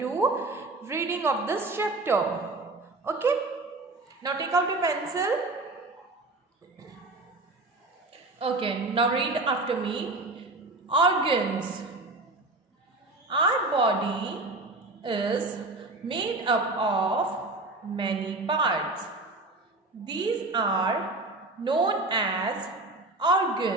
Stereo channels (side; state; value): left; quieter; 3.0 dB